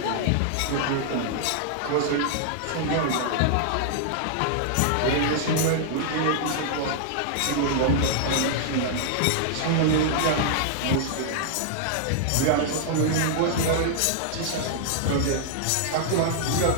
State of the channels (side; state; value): both; different; correlation -0.01